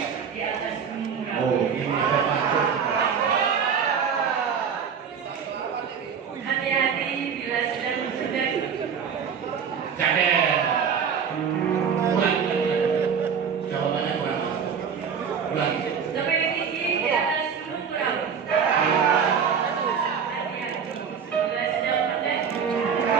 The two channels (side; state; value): left; quieter; 6.9 dB